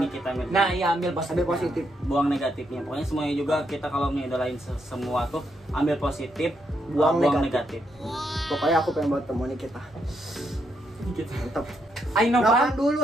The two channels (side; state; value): both; normal; correlation 0.79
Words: Nikita Mirzani. Nah iya, ambil Positif. Buang negatifnya. Pokoknya semuanya juga kita kalau ngidolain semua tuh ambil positif, Buang buang negatif. negatif. Pokoknya aku pengen buat temu Nikita. Mantap. Ayo Nopan Nopan dulu